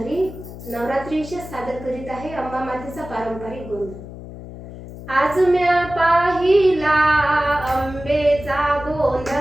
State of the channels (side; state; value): left; noise; hum, 13 dB below the sound